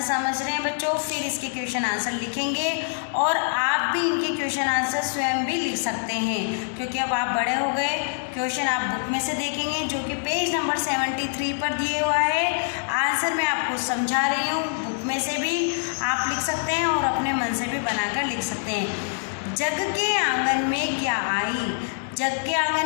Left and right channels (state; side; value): silent; right; digital silence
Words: समझ रहे हैं बच्चों, फिर इसके क्वेश्चन आंसर लिखेंगे और आप भी इनके क्वेश्चन आंसर स्वयं भी लिख सकते हैं क्योंकि अब आप बड़े हो गए। क्वेश्चन आप बुक में से देखेंगे जो कि पेज नंबर 73 पर दिए हुआ है। आंसर मैं आपको समझा रही हूँ, बुक में से भी आप लिख सकते हैं और अपने मन से भी बनाकर लिख सकते हैं। जग के आंगन में क्या आई? जग के